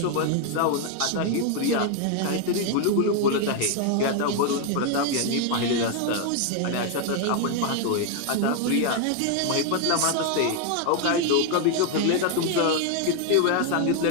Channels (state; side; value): different; both; correlation 0.00